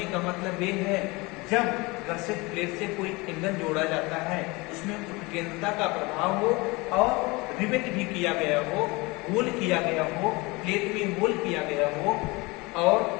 का मतलब ये है, जब गसेट प्लेट से कोई एंगल जोड़ा जाता है, उसमें उत्केंद्रता का प्रभाव हो और रिवेट भी किया गया हो, होल किया गया हो, प्लेट में होल किया गया हो और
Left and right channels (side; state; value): right; quieter; 24.5 dB